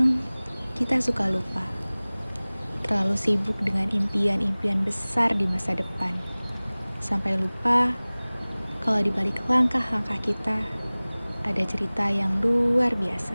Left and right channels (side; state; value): both; inverted; correlation -1.00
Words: kita suka lupa, terlalu sibuk dengan impian-impian besar di masa depan, sampai lupa kalau di balik langkah-langkah kita ada cerita yang luar biasa.